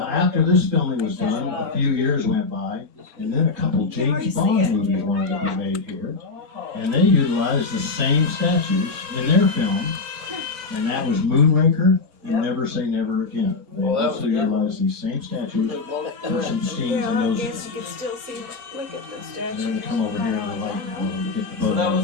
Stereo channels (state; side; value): quieter; right; 4.0 dB